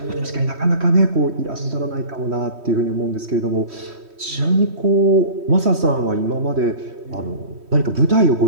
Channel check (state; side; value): late; left; 3.1 ms